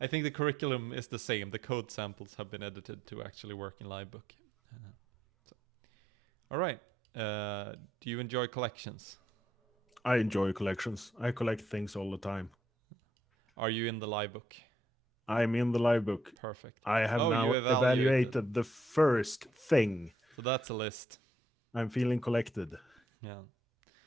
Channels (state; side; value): normal; both; correlation 0.74